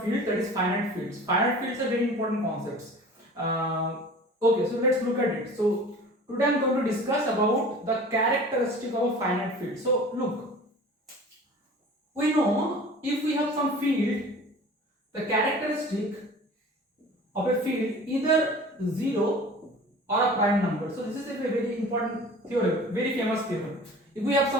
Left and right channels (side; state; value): both; normal; correlation 0.42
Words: field, that is finite fields. Finite fields are very important concepts. Okay, so let's look at it. So today I am going to discuss about the characteristic of a finite field. So look, we know if we have some field, the characteristic of a field either 0 or a prime number. So this is a very important theorem, very famous theorem. If we have